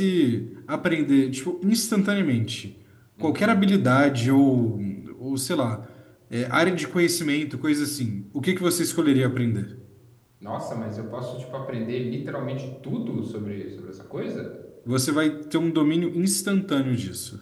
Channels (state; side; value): identical; both; correlation 1.00